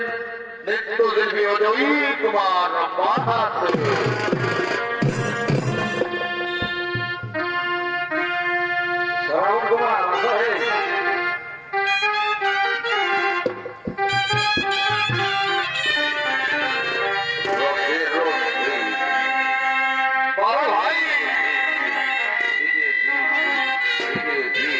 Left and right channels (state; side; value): identical; both; correlation 1.00